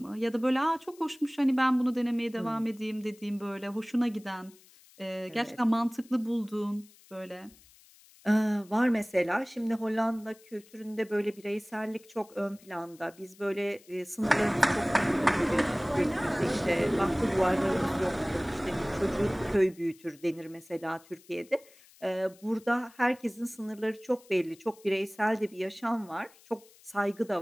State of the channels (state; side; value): noise; left; hiss, 26 dB below the sound